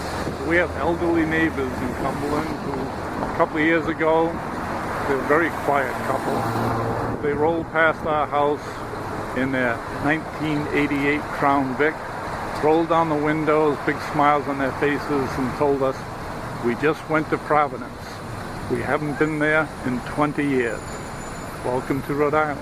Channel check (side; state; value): both; identical; correlation 1.00